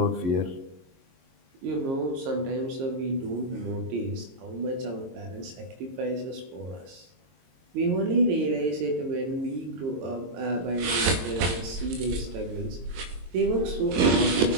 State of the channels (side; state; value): left; late; 22 ms